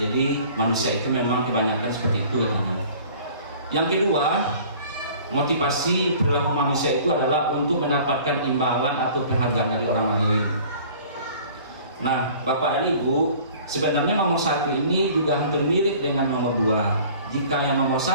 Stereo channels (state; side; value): inverted; both; correlation -0.49